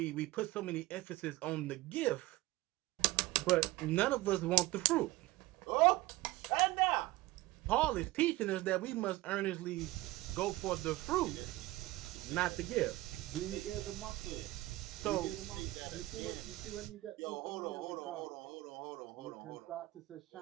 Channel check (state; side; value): quieter; left; 18.7 dB